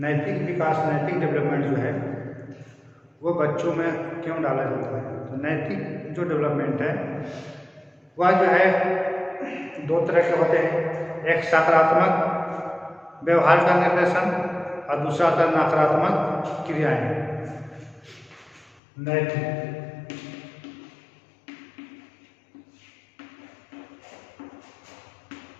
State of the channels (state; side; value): drops out; right; at 18.8 s